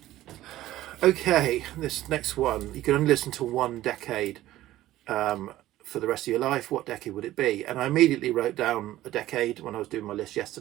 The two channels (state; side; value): quieter; left; 14.9 dB